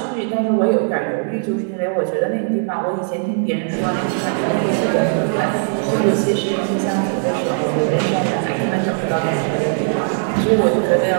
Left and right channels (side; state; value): left; silent; digital silence